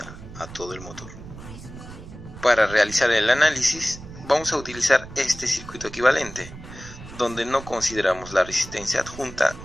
a todo el motor. Para realizar el análisis vamos a utilizar este circuito equivalente, donde no consideramos la resistencia adjunta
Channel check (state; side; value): noise; right; rumble, 15 dB below the sound